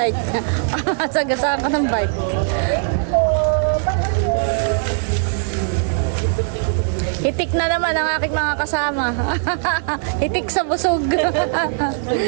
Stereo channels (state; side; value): silent; left; digital silence